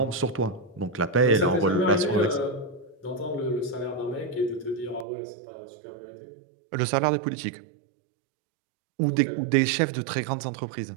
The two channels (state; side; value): drops out; left; at 5.1 s